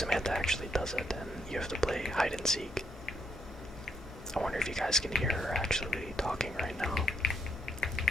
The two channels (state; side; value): normal; both; correlation 0.74